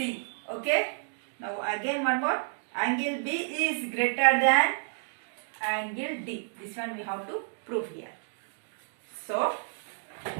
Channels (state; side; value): silent; left; digital silence